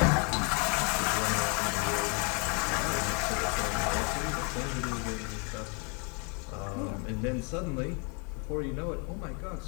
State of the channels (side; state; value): right; quieter; 35.4 dB